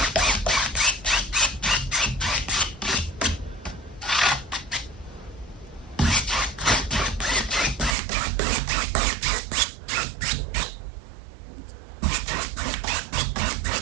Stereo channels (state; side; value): drops out; left; at 8.0 s